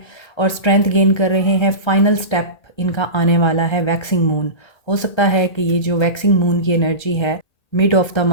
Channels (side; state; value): right; late; 1.3 ms